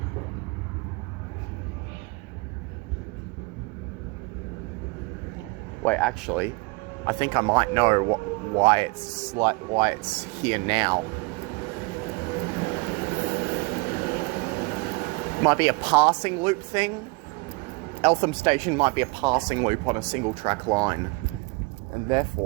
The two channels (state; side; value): quieter; left; 27.3 dB